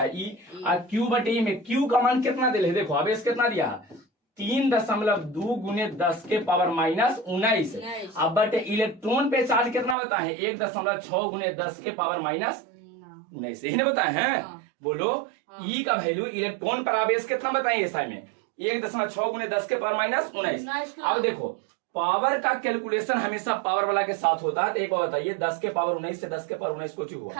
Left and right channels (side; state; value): left; drops out; at 10.0 s